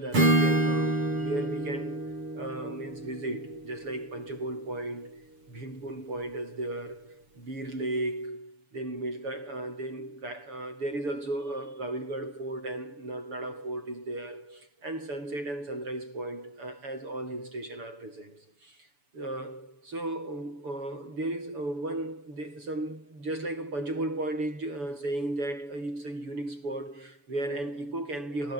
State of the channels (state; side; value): late; left; 7.0 ms